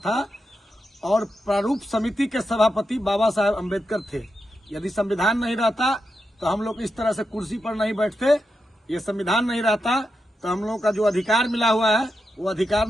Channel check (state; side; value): normal; both; correlation 0.87